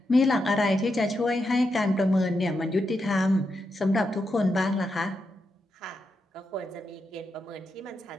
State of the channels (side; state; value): both; normal; correlation 0.85